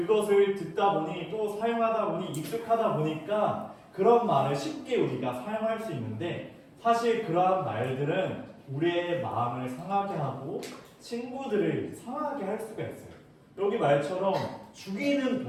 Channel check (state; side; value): identical; both; correlation 1.00